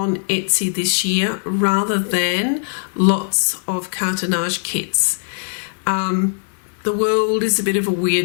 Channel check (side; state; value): right; silent; digital silence